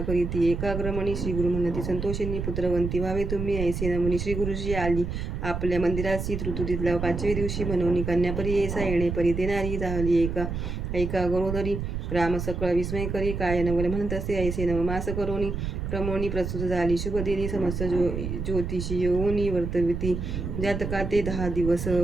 करीती एकाग्रमणी. श्री गुरु म्हणती संतोषिनी पुत्रवंती व्हावे तुम्ही ऐसे नमुनी. श्री गुरुजी आली आपल्या मंदिराची. ऋतुतीतल्या 5व्या दिवशी म्हणून कन्यापरी ऐसा. येणे परी ते नारी झाली ऐका गरोदरी. राम सकळ विस्मय करी. काय नवल म्हणत असे ऐसे नवमास करोनी. क्रमोनी प्रस्तुत झाली शुभ दिनी. समस्त ज्योतिषी येऊनी वर्तविती जातका ते 10 दिवस.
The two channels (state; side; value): noise; right; rumble, 4 dB below the sound